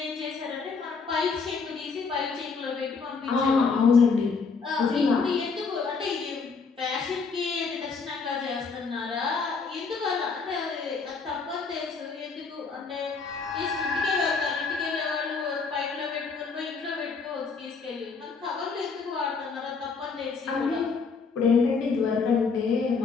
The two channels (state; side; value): quieter; right; 4.9 dB